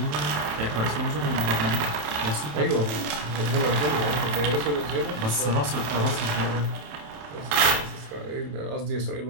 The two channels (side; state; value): left; late; 27 ms